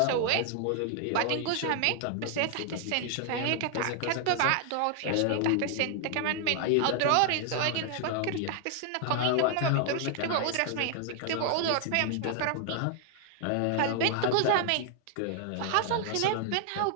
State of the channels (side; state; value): both; different; correlation 0.00